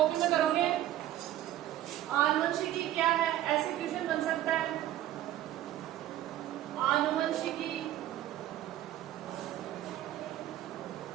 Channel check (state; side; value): quieter; left; 13.1 dB